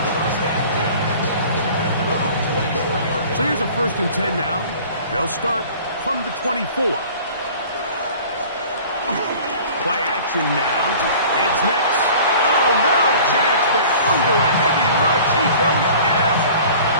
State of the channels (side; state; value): both; inverted; correlation -0.45